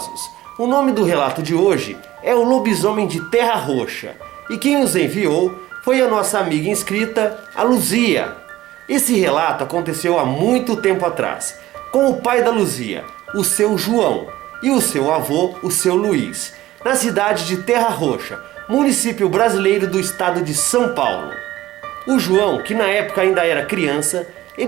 o nome do relato de hoje é O Lobisomem de Terra Roxa. E quem nos enviou foi a nossa amiga inscrita, a Luzia. Esse relato aconteceu há muito tempo atrás, com o pai da Luzia, o seu João, e o seu avô, o seu Luiz, na cidade de Terra Roxa, município brasileiro do estado de São Paulo. O João, que na época ainda era criança,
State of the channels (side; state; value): left; quieter; 15.8 dB